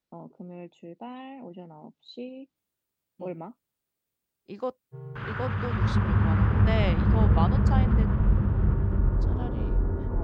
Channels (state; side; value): identical; both; correlation 1.00